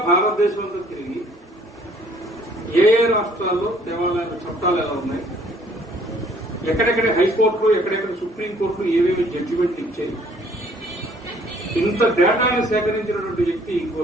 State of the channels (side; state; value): both; normal; correlation 0.60